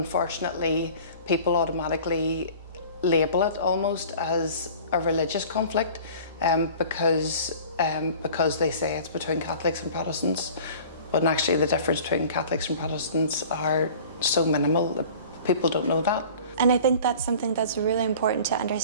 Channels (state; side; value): inverted; both; correlation -0.44